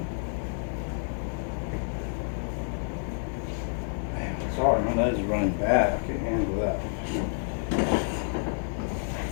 Sorry, my nose is running bad. I can't handle that.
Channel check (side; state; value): right; silent; digital silence